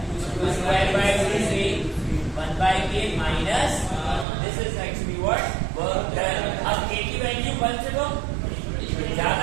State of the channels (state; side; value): drops out; left; at 4.2 s